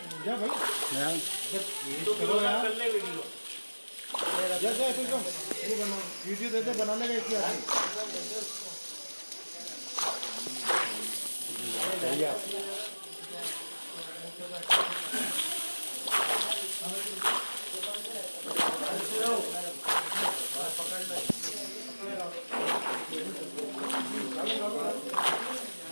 जा भाई जा जा ये बना वीडियो दे दे बनाने का इसी आदमी।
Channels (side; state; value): both; inverted; correlation -1.00